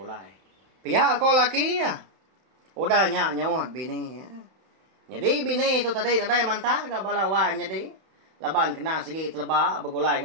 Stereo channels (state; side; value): late; left; 31 ms